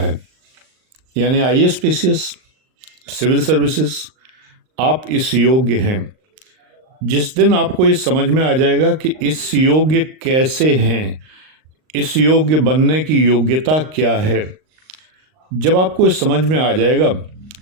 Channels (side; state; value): left; late; 39 ms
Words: यानी आईएएस पीसीएस, सिविल सर्विसेज, आप इस योग्य हैं। जिस दिन आपको ये समझ में आ जाएगा कि इस योग्य कैसे हैं, इस योग्य बनने की योग्यता क्या है, जब आपको ये समझ में आ जाएगा